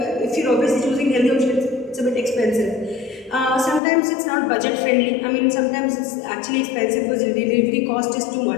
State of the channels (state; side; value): drops out; right; at 3.8 s